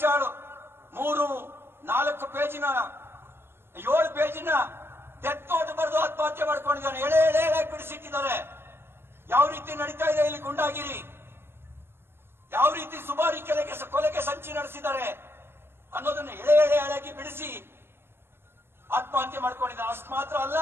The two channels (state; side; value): late; left; 0.11 ms